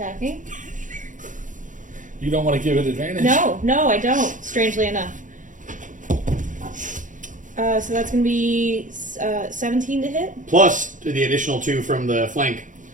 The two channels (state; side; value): late; left; 0.37 ms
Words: You don't want to give it advantage? No, I don't. Strangely enough. So that's going to be 17 to hit. Plus the additional 2 from the flank,